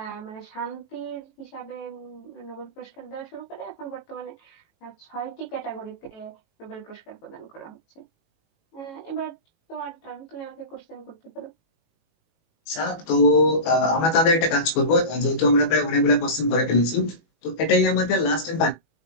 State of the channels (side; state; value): right; late; 18 ms